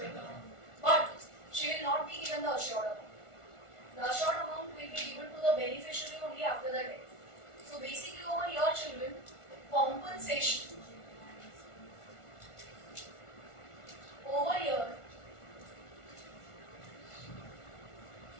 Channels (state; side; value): late; right; 1.4 ms